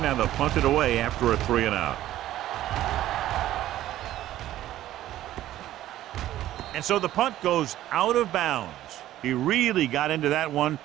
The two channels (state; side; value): quieter; left; 13.7 dB